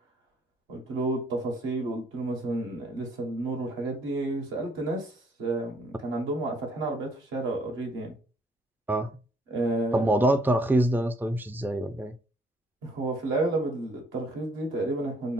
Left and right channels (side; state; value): both; normal; correlation 0.65